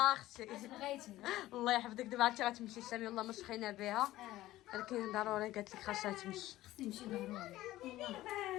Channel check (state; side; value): quieter; right; 15.8 dB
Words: اختي بغيتي الله يحفظك. دابا عرفتي غتمشي سامي والله ما شخينا بها ولكن ضروري قالت لك خاصها تمشي. خصني نمشي ضروري هنا